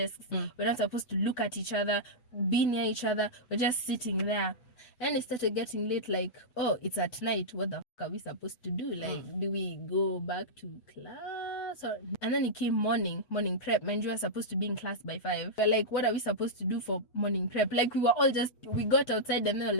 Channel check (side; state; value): right; late; 8.3 ms